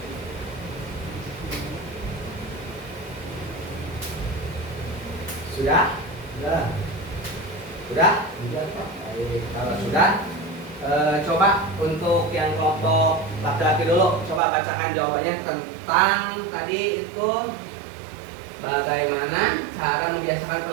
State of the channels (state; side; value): drops out; left; at 14.4 s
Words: Sudah? Sudah. Sudah? Sudah, Pak. Baik, kalau sudah, coba untuk yang kelompok laki-laki dulu, coba bacakan jawabannya tentang tadi itu bagaimana cara membiasakan